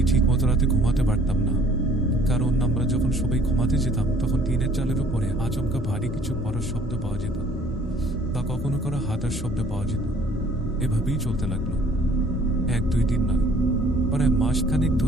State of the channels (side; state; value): both; normal; correlation 0.57